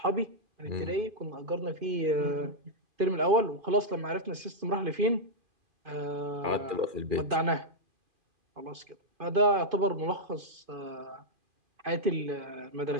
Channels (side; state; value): left; late; 2.5 ms